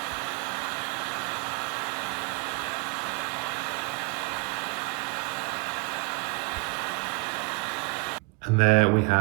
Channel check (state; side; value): quieter; left; 29.8 dB